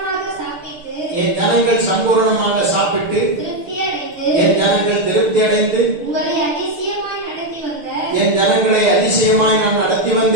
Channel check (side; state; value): left; late; 6.6 ms